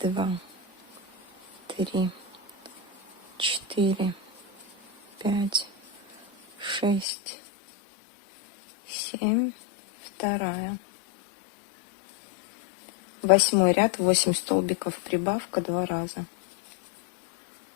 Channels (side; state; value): right; drops out; at 7.1 s